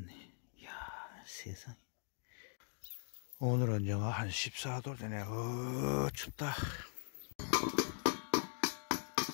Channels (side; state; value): right; silent; digital silence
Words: 이야, 세상에. 오늘은 영하 한 14도 되네. 춥다.